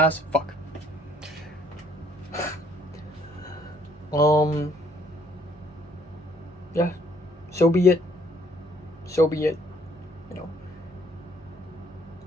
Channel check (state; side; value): normal; both; correlation 0.62